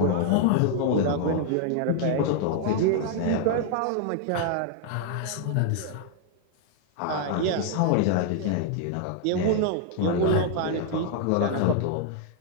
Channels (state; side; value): different; both; correlation 0.00